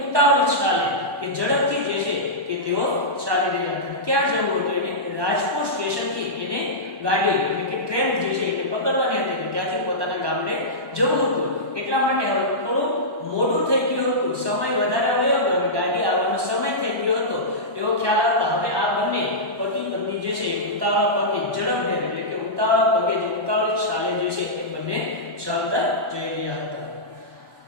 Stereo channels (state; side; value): late; left; 1.1 ms